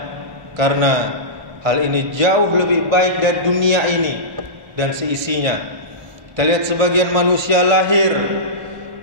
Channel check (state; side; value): late; left; 1.8 ms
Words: karena hal ini jauh lebih baik dari dunia ini dan seisinya. Kita lihat sebagian manusia lahir